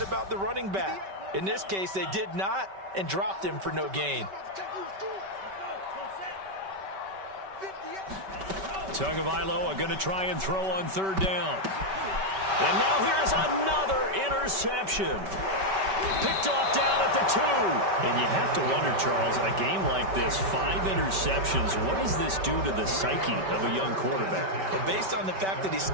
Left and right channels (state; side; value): late; left; 5.2 ms